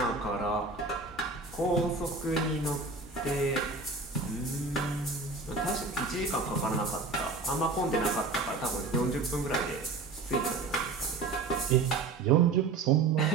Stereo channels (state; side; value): quieter; left; 3.9 dB